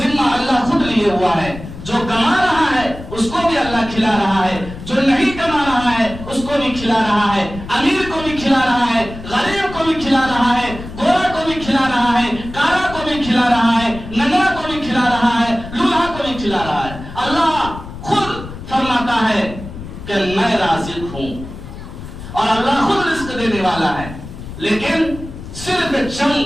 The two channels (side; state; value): left; noise; rumble, 12 dB below the sound